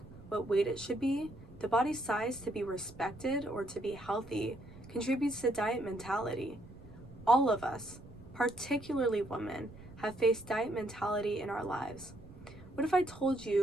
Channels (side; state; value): right; noise; rumble, 18 dB below the sound